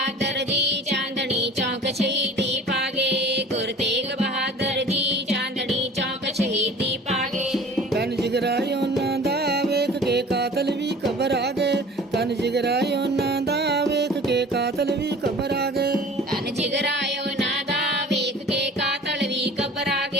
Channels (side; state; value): both; normal; correlation 0.44